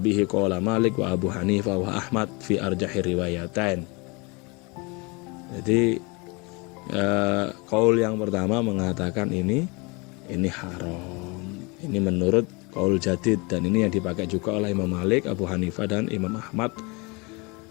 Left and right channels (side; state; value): right; quieter; 28.4 dB